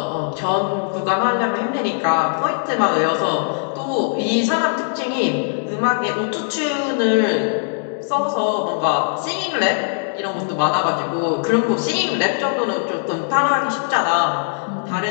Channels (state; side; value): silent; right; digital silence